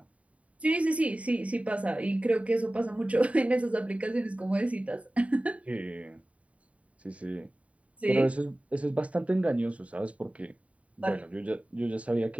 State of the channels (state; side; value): late; left; 0.066 ms